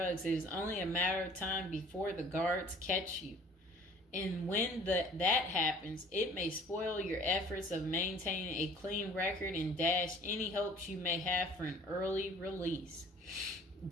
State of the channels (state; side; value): normal; both; correlation 0.51